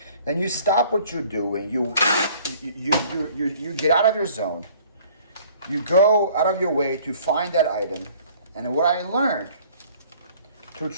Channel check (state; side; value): inverted; both; correlation -0.54